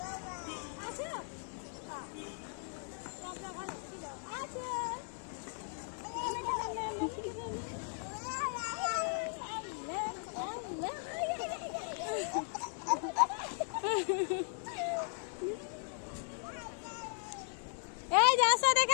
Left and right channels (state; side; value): silent; right; 53 dB below the other